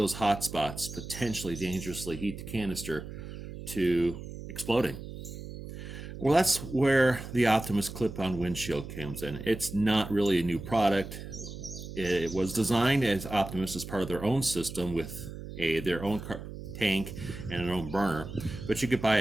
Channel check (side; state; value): right; noise; hum, 10 dB below the sound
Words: hot spots potentially dangerously heat the canister to exploding? Well, that's where the Optimus clip-on windshield comes in. It's not really a new product. It was designed as Optimus as part of their own system with their own tank and their own burner, but you could buy